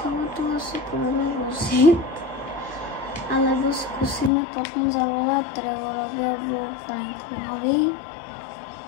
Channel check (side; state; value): right; drops out; at 4.3 s